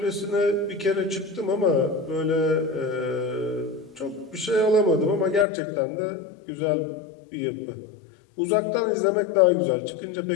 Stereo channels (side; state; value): right; drops out; at 5.5 s